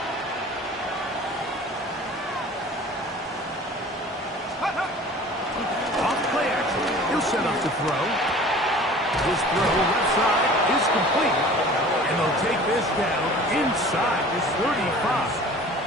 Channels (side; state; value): both; normal; correlation 0.44